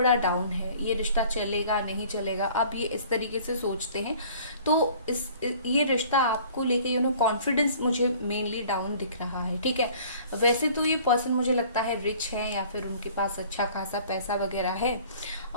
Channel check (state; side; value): inverted; both; correlation -0.51